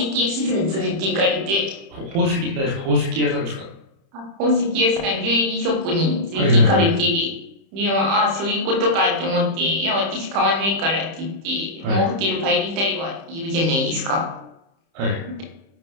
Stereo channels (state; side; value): late; left; 30 ms